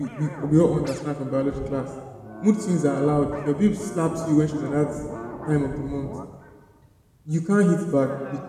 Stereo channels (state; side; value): identical; both; correlation 1.00